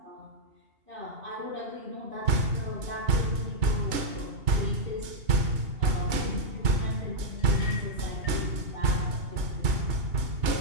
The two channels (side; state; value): left; late; 2.8 ms